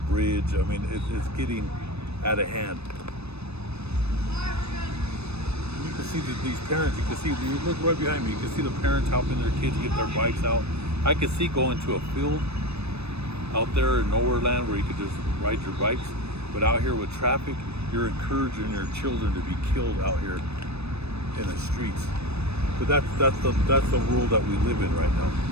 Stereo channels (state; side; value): late; left; 0.79 ms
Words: bridge. I mean, it's getting out of hand. You can see these parents, you look right behind me, you can see the parents helping their kids get their bikes out. I could see going to a field out there in nowhere land where you could just ride your bikes, but out here with traffic, you're encouraging your children to be killed out here in the streets. But that's the world that we live in right now.